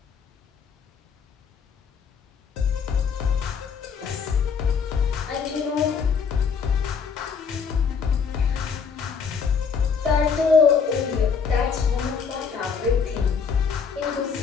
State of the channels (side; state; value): right; quieter; 6.0 dB